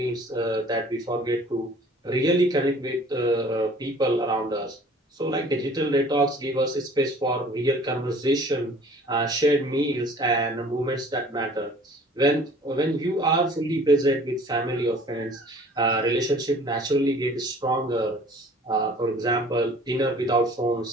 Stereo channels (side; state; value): both; normal; correlation 0.50